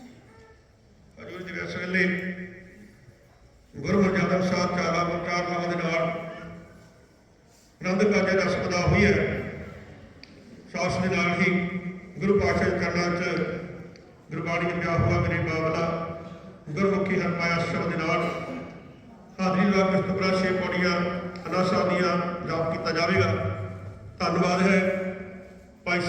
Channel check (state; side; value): identical; both; correlation 1.00